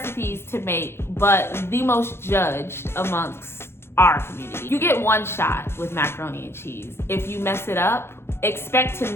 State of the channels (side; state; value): right; late; 0.12 ms